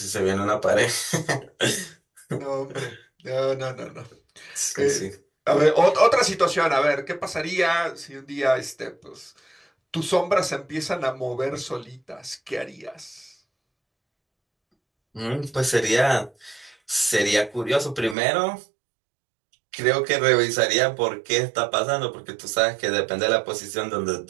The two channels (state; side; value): drops out; left; at 18.2 s